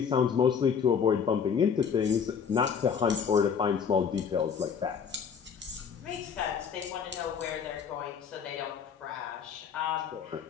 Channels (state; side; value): quieter; right; 6.9 dB